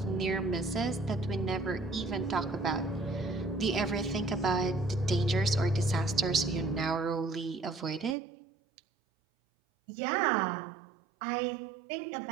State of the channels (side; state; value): left; drops out; at 8.2 s